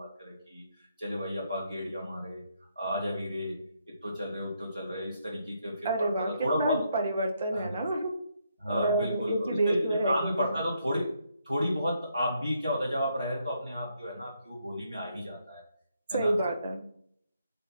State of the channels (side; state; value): both; inverted; correlation -0.76